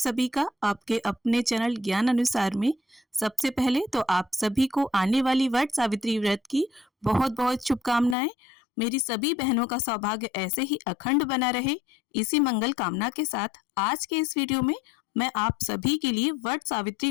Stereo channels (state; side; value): drops out; right; at 8.2 s